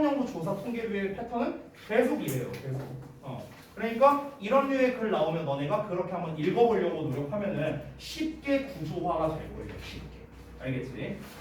조사 통계류의 패턴은 계속 이래요. 계속. 그러니까 이런 류의 글 나오면 너네가 그렇게 한번 읽어보려고 노력하면은 쉽게 구조화가 될 거예요. 쉽게. 알겠지?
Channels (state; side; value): identical; both; correlation 1.00